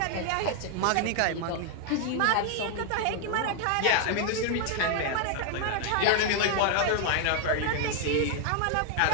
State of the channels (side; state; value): both; different; correlation 0.00